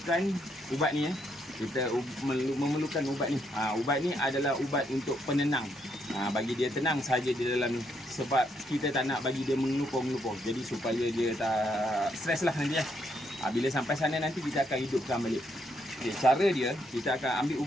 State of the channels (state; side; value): normal; both; correlation 0.75